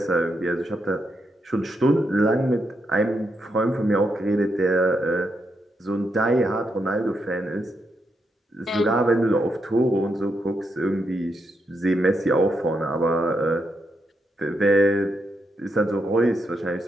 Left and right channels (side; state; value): both; normal; correlation 0.81